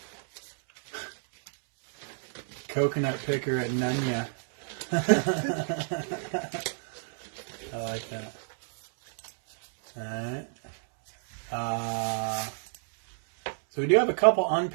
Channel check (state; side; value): silent; left; 58 dB below the other